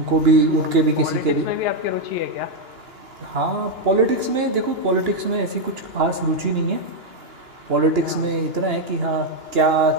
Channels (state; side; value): late; left; 2.9 ms